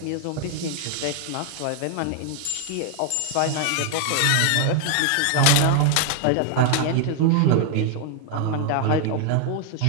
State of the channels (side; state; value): both; different; correlation 0.00